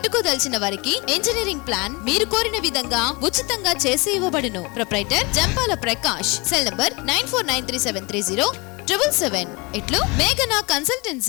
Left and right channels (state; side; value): quieter; right; 26.9 dB